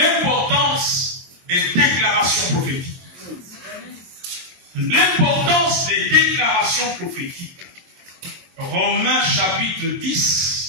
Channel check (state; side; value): late; left; 22 ms